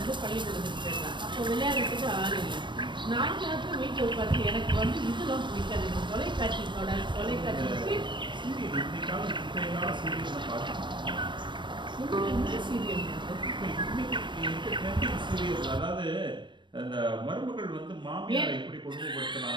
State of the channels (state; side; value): late; left; 0.22 ms